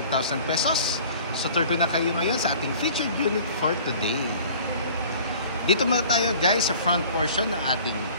pesos. So turgo na kayo ngayon sa ating featured unit for today. Dito muna tayo guys sa front portion ng ating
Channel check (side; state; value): both; inverted; correlation -0.47